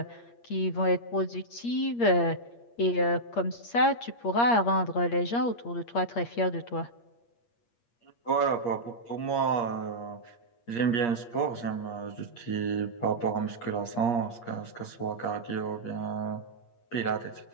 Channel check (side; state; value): right; late; 8.5 ms